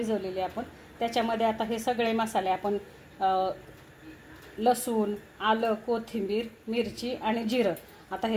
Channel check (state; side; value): identical; both; correlation 1.00